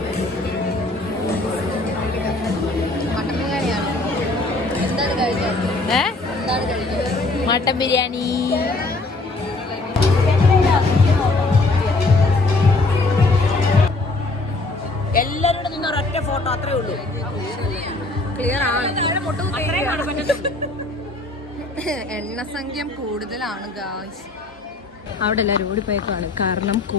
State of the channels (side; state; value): right; quieter; 3.1 dB